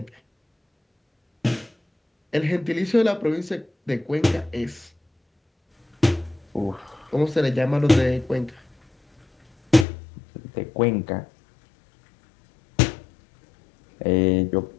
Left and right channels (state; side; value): drops out; right; at 9.9 s